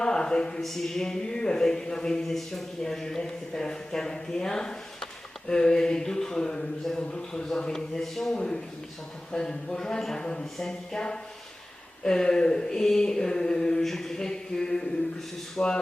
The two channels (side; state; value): both; normal; correlation 0.97